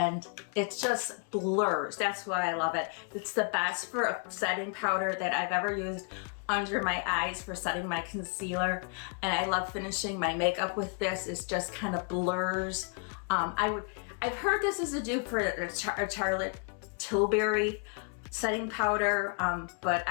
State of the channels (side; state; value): right; quieter; 38.7 dB